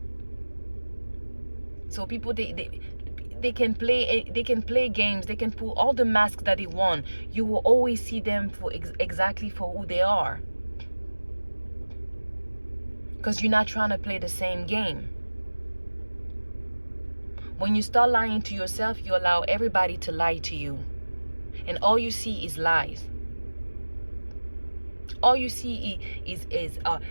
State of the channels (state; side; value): inverted; both; correlation -1.00